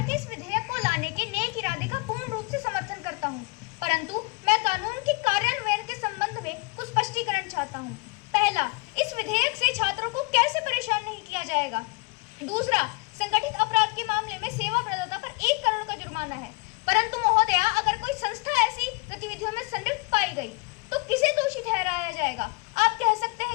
के इस विधेयक को लाने के नेक इरादे का पूर्ण रूप से समर्थन करता हूं, परंतु मैं कानून के कार्यान्वयन के संबंध में कुछ स्पष्टीकरण चाहता हूं। पहला, इस विधेयक से छात्रों को कैसे परेशान नहीं किया जाएगा। दूसरा, संगठित अपराध के मामले में सेवा प्रदाता पर 1 करोड़ का जुर्माना है, परंतु महोदया अगर कोई संस्था ऐसी गतिविधियों में संलिप्त पाई गई तो किसे दोषी ठहराया जाएगा। आप कह सकते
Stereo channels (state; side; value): quieter; right; 29.4 dB